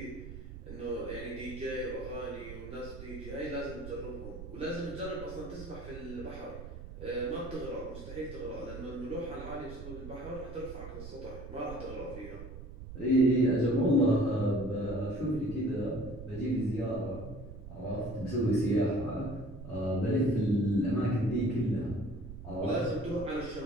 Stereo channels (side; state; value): right; noise; rumble, 11 dB below the sound